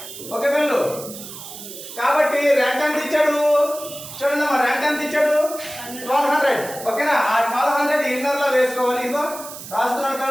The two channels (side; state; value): right; noise; hiss, 12 dB below the sound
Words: ఓకే పిల్లలు, కాబట్టి రెంట్ ఎంత ఇచ్చాడు చూడండి అమ్మా, రెంట్ ఎంత ఇచ్చాడు? 1200. ఓకేనా? ఆ 1200 ఇన్నర్ లో వేసుకోవాలి. ఇదిగో రాస్తున్నాను